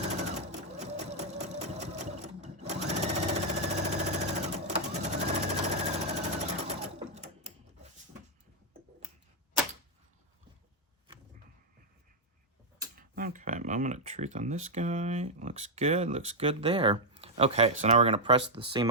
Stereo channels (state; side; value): normal; both; correlation -0.01